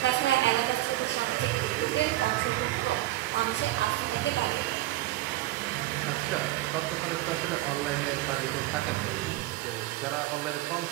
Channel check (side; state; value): left; quieter; 16.4 dB